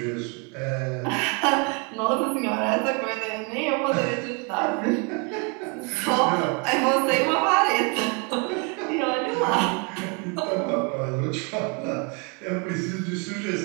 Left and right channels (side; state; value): left; quieter; 33.8 dB